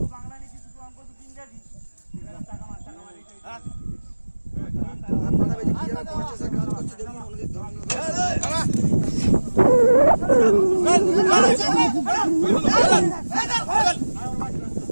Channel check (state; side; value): inverted; both; correlation -1.00